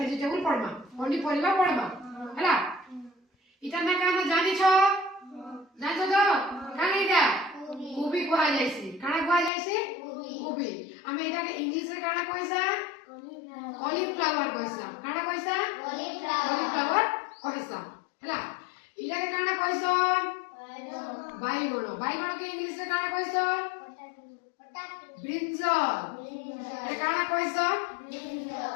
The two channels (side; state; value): right; drops out; at 9.5 s